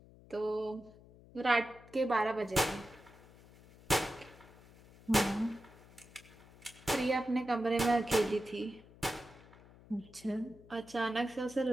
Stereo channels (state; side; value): noise; left; hum, 23 dB below the sound